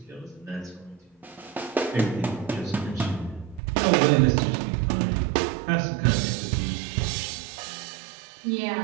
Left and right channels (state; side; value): drops out; left; at 3.6 s